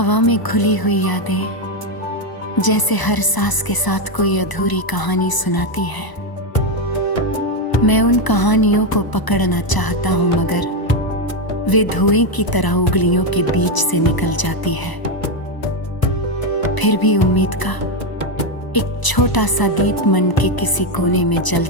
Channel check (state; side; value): late; right; 1.0 ms